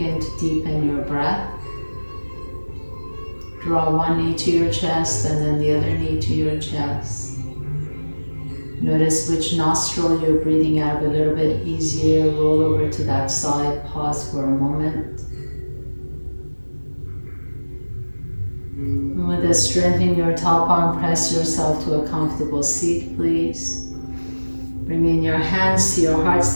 to deepen your breath. Draw one knee to your chest and then the other knee to your chest. Notice which nostril you're breathing out of a little bit easier. Roll over to that side, pause for a moment. And with a strength in your top arm, press yourself to a comfortable seat, please. Bring in your hands to your heart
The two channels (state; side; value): inverted; both; correlation -1.00